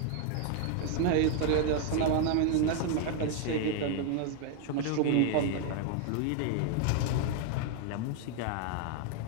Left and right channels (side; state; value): both; different; correlation 0.00